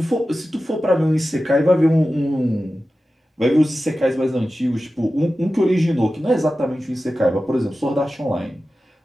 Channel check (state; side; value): normal; both; correlation 0.94